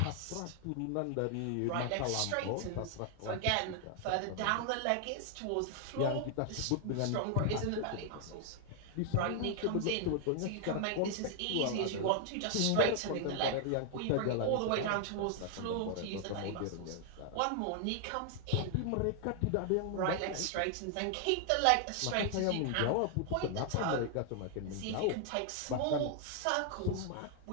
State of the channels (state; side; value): different; both; correlation 0.00